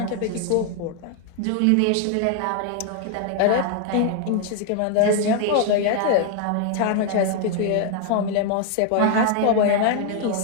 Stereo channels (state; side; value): different; both; correlation 0.00